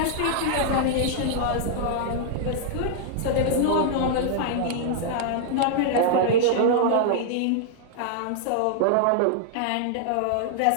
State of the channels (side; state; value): both; different; correlation -0.01